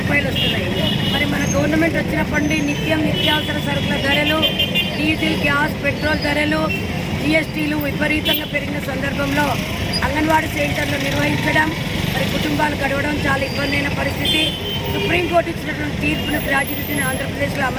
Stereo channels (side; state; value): both; identical; correlation 1.00